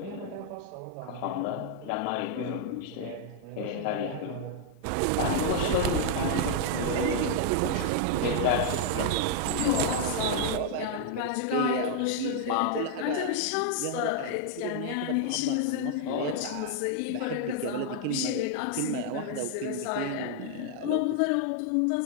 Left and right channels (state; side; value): different; both; correlation -0.01